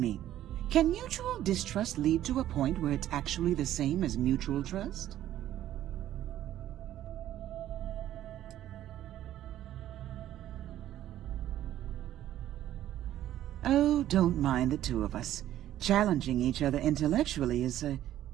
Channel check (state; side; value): quieter; left; 12.6 dB